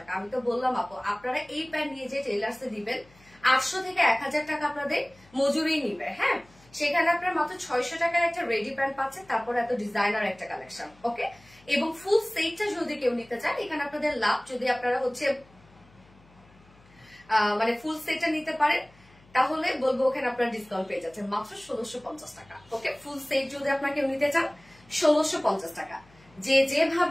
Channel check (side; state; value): left; noise; hum, 28 dB below the sound